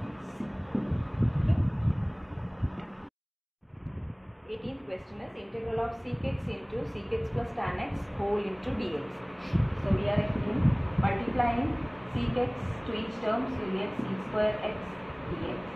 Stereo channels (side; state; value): both; identical; correlation 1.00